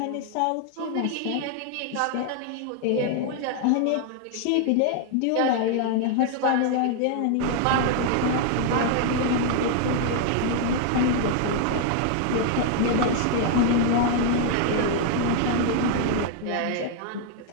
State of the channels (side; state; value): both; different; correlation 0.00